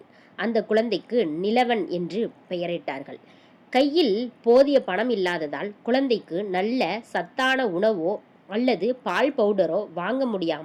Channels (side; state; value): both; identical; correlation 1.00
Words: அந்த குழந்தைக்கு நிலவன் என்று பெயரிட்டார்கள். கையில் போதிய பணம் இல்லாததால் குழந்தைக்கு நல்ல சத்தான உணவோ அல்லது பால் பவுடரோ வாங்க